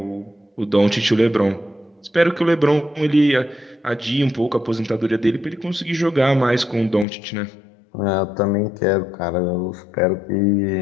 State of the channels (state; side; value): drops out; right; at 7.1 s